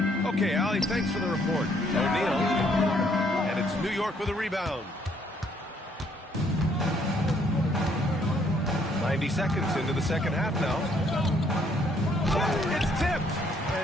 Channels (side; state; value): both; normal; correlation 0.67